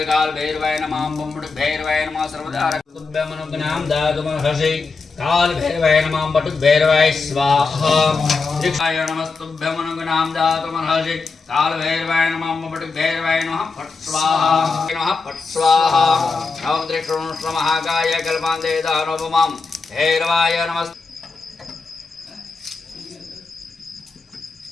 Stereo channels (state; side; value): quieter; right; 4.4 dB